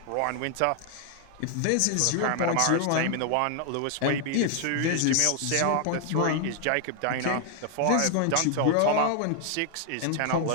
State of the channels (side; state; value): both; different; correlation 0.00